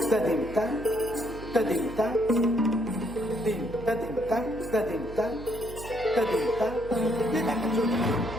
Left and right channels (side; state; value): right; noise; hum, 14 dB below the sound